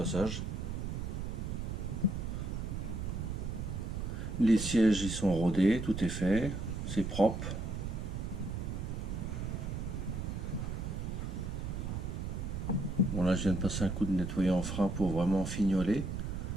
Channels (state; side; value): noise; right; rumble, 3 dB below the sound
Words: Les sièges ils sont rodés, tout est fait, c'est propre. Bon là je viens de passer un coup de nettoyant en frein pour vraiment fignoler.